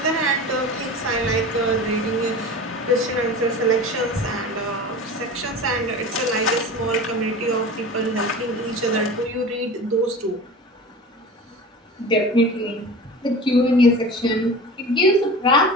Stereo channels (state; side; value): normal; both; correlation 0.34